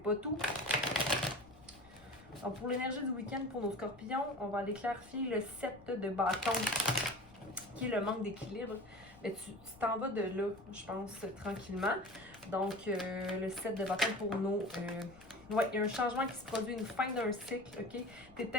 tout. Donc, pour l'énergie du week-end pour nos scorpions, on va aller clarifier le 7 de bâton, qui est le manque d'équilibre. Mais tu t'en vas de là, je pense, tranquillement. Donc, le 7 de bâton pour nos... ouais, il y a un changement qui se produit, une fin d'un cycle, ok? T'es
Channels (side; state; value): left; noise; rumble, 24 dB below the sound